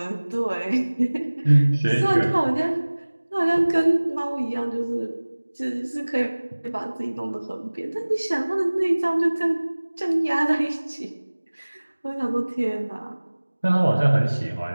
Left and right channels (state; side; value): inverted; both; correlation -1.00